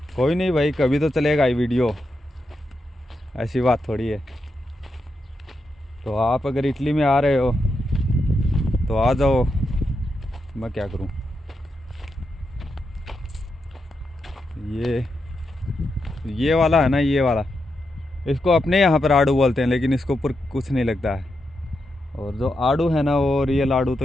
कोई नहीं भाई, कभी तो चलेगा ये वीडियो, ऐसी बात थोड़ी है। तो आप अगर इटली में आ रहे हो तो आ जाओ, मैं क्या करूं। ये वाला है ना, ये वाला, इसको अपने यहाँ पर आड़ू बोलते हैं, लेकिन इसके ऊपर कुछ नहीं लगता है। और जो आड़ू है ना, वो रियल आड़ू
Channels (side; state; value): both; normal; correlation 0.85